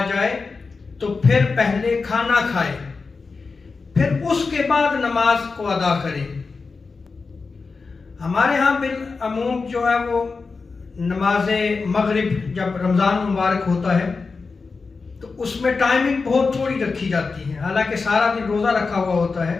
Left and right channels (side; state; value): right; quieter; 4.4 dB